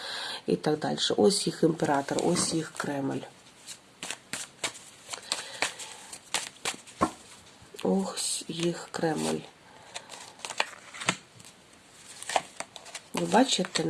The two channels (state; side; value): identical; both; correlation 1.00